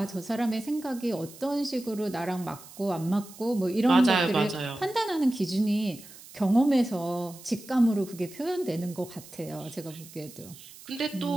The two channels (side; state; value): right; noise; hiss, 18 dB below the sound